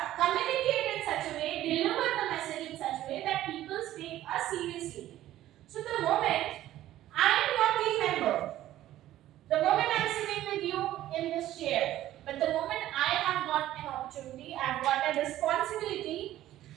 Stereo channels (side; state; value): left; quieter; 13.8 dB